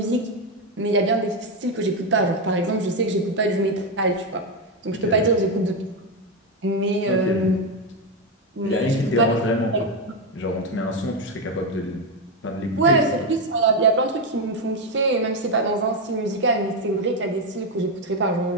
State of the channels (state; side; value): normal; both; correlation 0.08